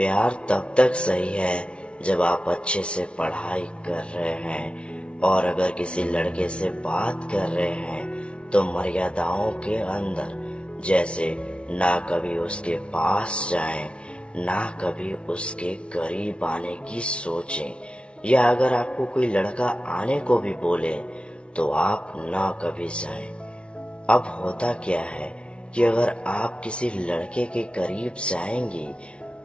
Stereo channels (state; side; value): late; right; 0.059 ms